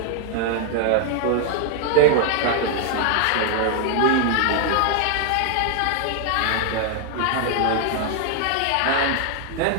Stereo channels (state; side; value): different; both; correlation 0.00